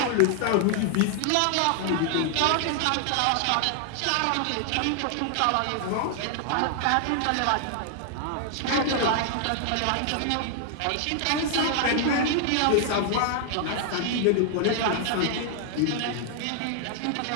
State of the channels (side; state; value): both; different; correlation 0.00